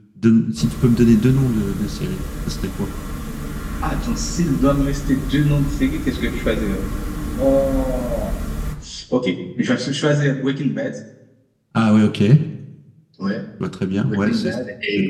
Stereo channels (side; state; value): both; identical; correlation 1.00